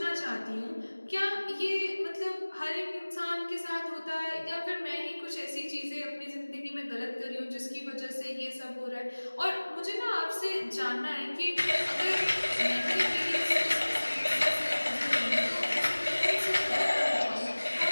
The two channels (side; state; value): both; inverted; correlation -1.00